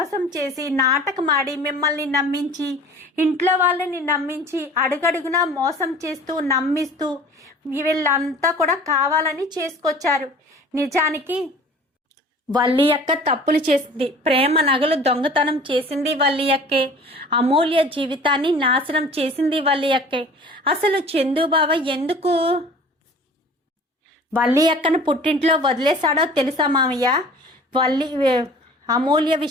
చేసి నాటకమాడి మిమ్మల్ని నమ్మించి, ఇంట్లో వాళ్ళని నమ్మించి, అడుగడుగునా మోసం చేస్తూ నమ్మిస్తూ వీళ్ళంతా కూడా కావాలని చేసుకొచ్చారు. నిజానికి వల్లి అక్క తప్పులు చేసింది. ప్రేమ నగలు దొంగతనం చేసింది వల్లి అక్కే. అమూల్య జీవితాన్ని నాశనం చేసింది వల్లి అక్కే. అసలు చందుబావ ఎందుకు వల్లి అక్కను పుట్టింట్లో వదిలేశాడో తెలుసా మామయ్య? అమూల్య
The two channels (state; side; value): normal; both; correlation 0.45